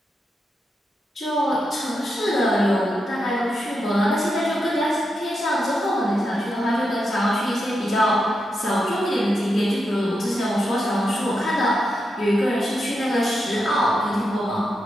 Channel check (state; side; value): normal; both; correlation 0.85